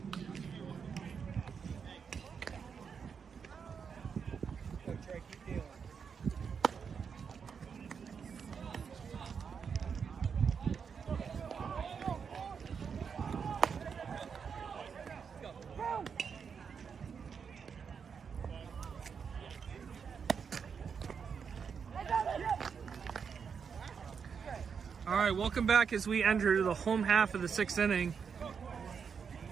Go, Trey, keep dealing. All right, welcome back as we enter the home half of the 6th inning.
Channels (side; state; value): left; quieter; 6.4 dB